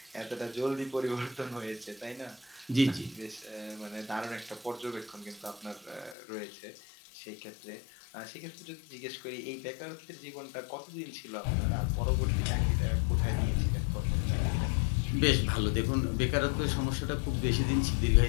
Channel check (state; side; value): drops out; right; at 6.2 s